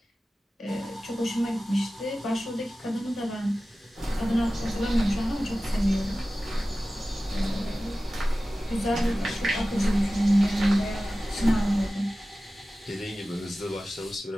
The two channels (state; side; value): normal; both; correlation 0.96